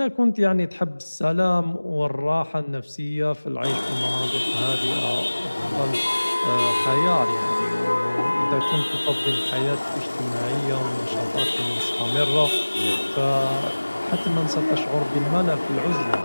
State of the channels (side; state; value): both; inverted; correlation -1.00